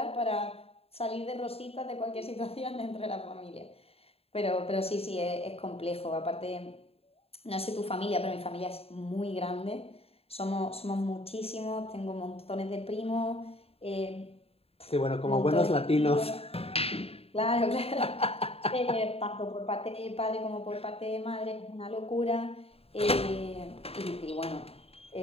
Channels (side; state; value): right; late; 0.29 ms